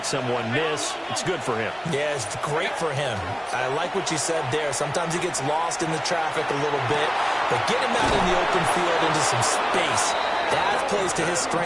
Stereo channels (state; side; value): identical; both; correlation 1.00